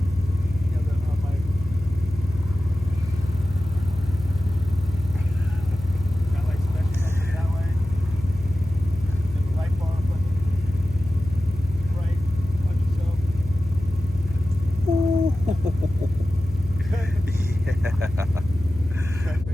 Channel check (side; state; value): left; noise; hum, 11 dB below the sound